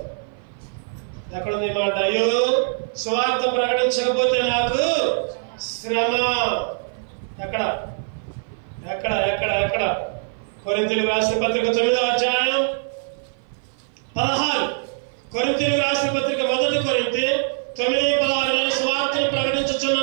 ఎక్కడుంది ఈ మాట? అయ్యో సువార్త ప్రకటించకపోతే నాకు శ్రమ. ఎక్కడ ఎక్కడ ఎక్కడ ఎక్కడ? కొరింథీయులకు రాసిన పత్రిక 9వ అధ్యాయం 16. కొరింథీయులకు రాసిన పత్రిక 1 కొరింథీ 9:16 సువార్తను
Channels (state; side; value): silent; left; 56 dB below the other